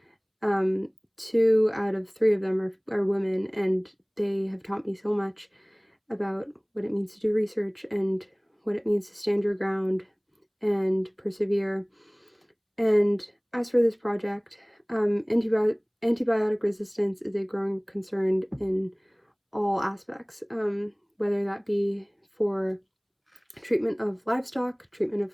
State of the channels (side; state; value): both; identical; correlation 1.00